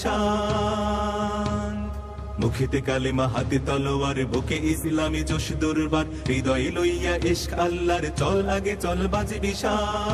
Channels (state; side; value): identical; both; correlation 1.00